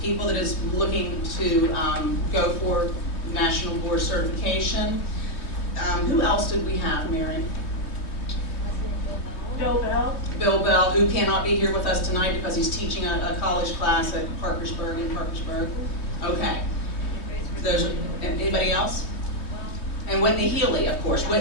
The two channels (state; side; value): late; right; 3.1 ms